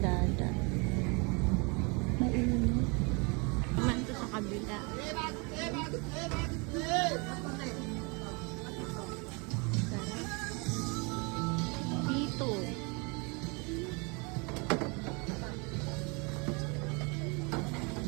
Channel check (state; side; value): quieter; left; 30.8 dB